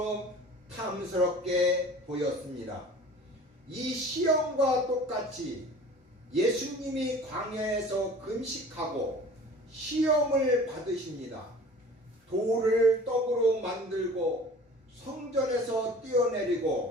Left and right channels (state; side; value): normal; both; correlation 0.44